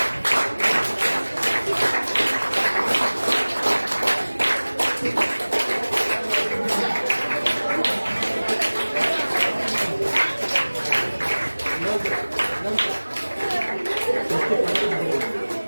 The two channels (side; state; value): both; inverted; correlation -1.00